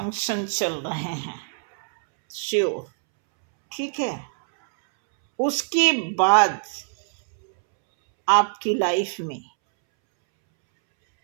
चल रहे हैं, श्योर, ठीक है। उसके बाद आपकी लाइफ में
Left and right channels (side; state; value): left; silent; 63 dB below the other